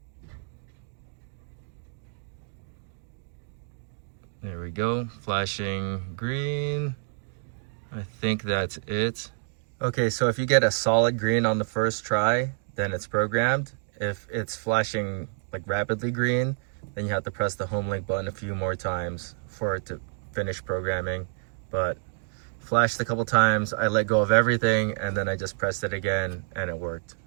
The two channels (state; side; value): silent; left; 59 dB below the other